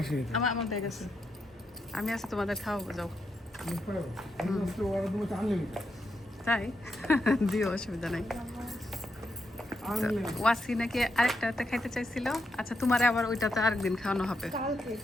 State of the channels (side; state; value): both; normal; correlation 0.83